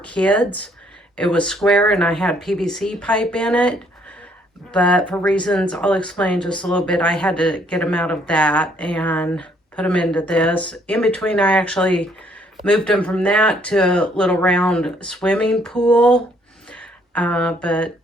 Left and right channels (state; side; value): normal; both; correlation 0.66